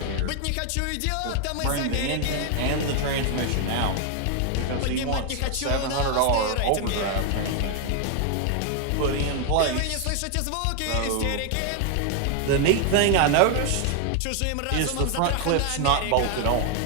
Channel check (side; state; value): both; different; correlation 0.00